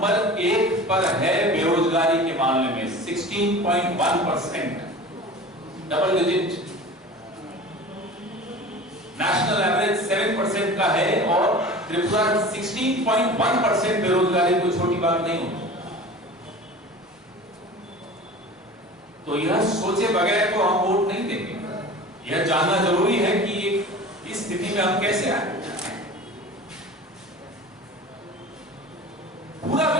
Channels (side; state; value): both; normal; correlation 0.38